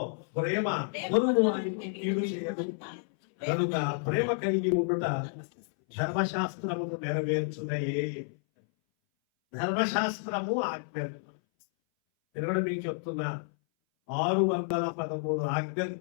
ప్రేమ కీడు చేయదు కనుక ప్రేమ కలిగి ఉండుట ధర్మశాస్త్రమును నెరవేర్చున్నాయే. ధర్మశాస్త్రము ఆజ్ఞలు. నేను కూడా మీకు చెప్తున్నా, 613 ఆజ్ఞలు.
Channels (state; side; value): silent; right; 58 dB below the other